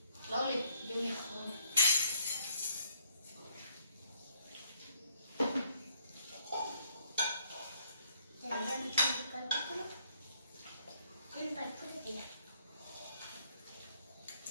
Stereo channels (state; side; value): inverted; both; correlation -0.68